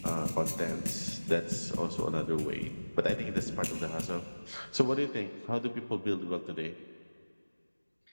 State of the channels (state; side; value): inverted; both; correlation -1.00